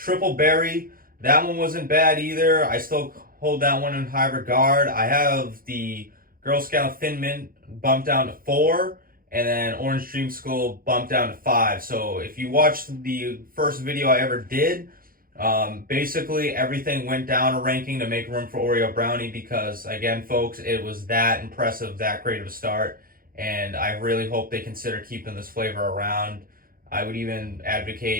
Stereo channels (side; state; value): left; late; 0.42 ms